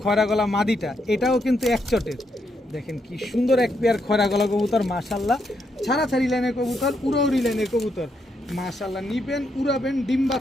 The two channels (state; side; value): normal; both; correlation 0.79